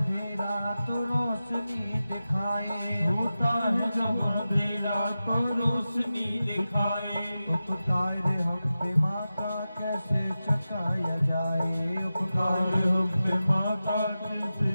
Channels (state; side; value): inverted; both; correlation -0.93